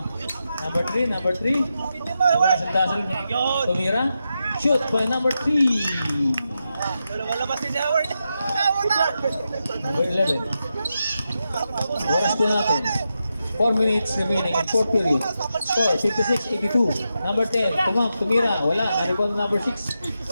number 3. Number 3. Nagkasal-dasal. Tumira. Shoot by number 3. Walabas si Howard. Number 11. Oras po natin. 4 minutes remaining in 4th period. Score 56-82. Number 10. Tumira. Wala. Narito na number 6.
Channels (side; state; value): both; inverted; correlation -0.88